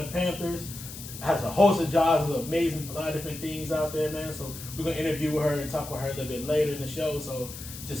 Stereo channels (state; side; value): noise; left; hiss, 12 dB below the sound